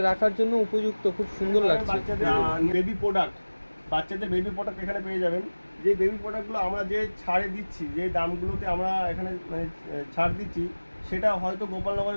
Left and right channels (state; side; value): inverted; both; correlation -1.00